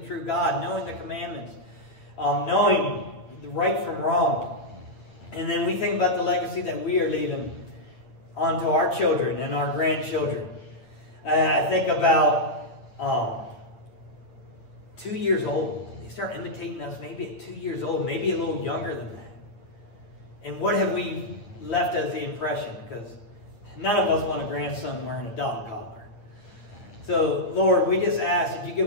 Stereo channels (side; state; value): right; late; 9.0 ms